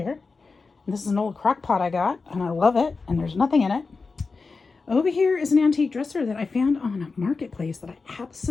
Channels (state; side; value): quieter; right; 4.3 dB